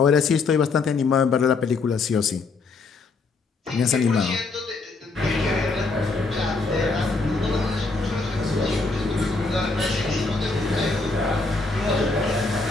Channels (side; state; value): right; quieter; 4.0 dB